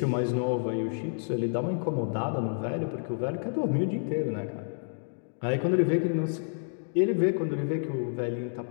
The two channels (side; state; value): right; silent; digital silence